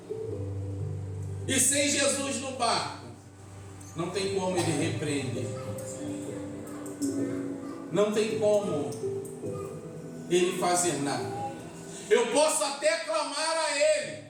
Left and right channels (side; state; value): both; identical; correlation 1.00